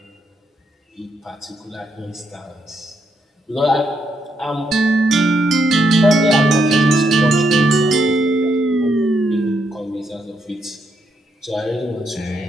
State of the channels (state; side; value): normal; both; correlation 0.78